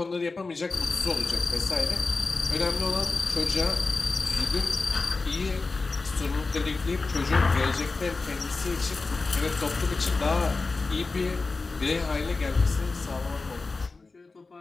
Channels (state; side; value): quieter; right; 3.8 dB